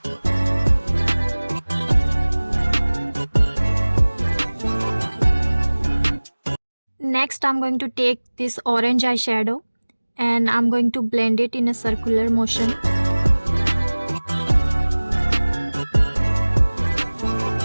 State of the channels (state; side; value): inverted; both; correlation -1.00